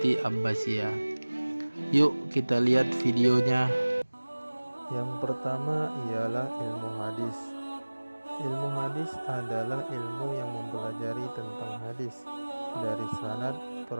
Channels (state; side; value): inverted; both; correlation -1.00